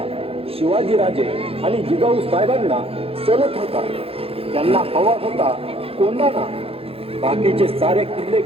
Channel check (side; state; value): left; late; 0.28 ms